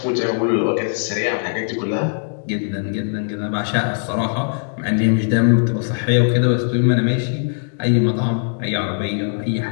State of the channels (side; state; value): right; silent; digital silence